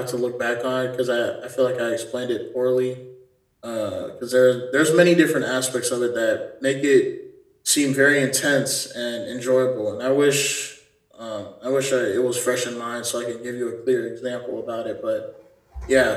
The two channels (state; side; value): identical; both; correlation 1.00